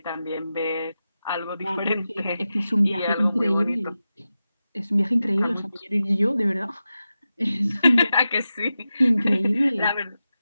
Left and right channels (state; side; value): inverted; both; correlation -0.92